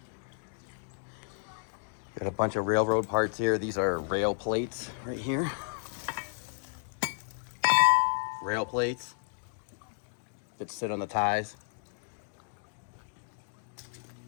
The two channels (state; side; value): silent; right; digital silence